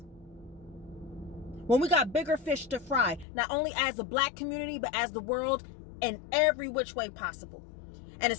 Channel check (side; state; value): right; drops out; at 3.2 s